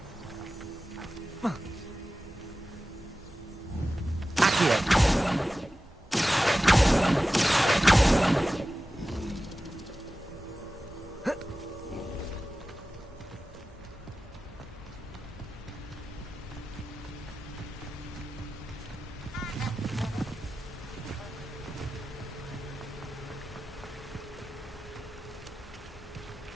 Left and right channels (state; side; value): normal; both; correlation 0.94